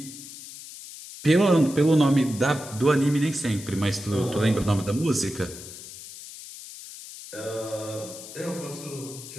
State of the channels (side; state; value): left; noise; hiss, 14 dB below the sound